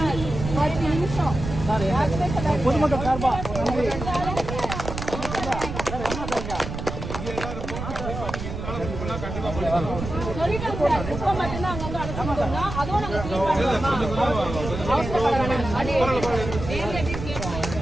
10 நிமிஷம். பொதுமக்கள் சார்பா சொல்லிட்டோம் சார், குப்பை மட்டும்தான் அங்க வந்து அடைச்சிருக்கோம்னா அதுவும் நாங்க அது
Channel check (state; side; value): noise; right; rumble, 7 dB below the sound